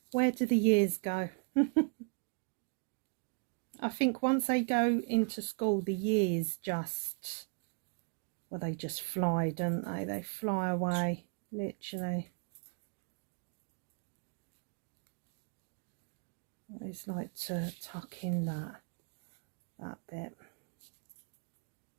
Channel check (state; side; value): quieter; left; 38.2 dB